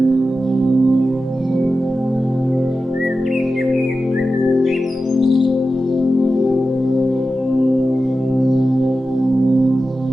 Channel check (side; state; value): both; normal; correlation 0.93